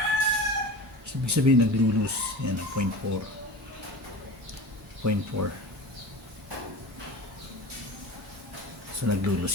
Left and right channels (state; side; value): normal; both; correlation 0.33